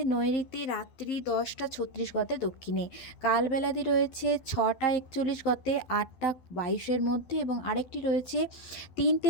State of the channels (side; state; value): right; late; 12 ms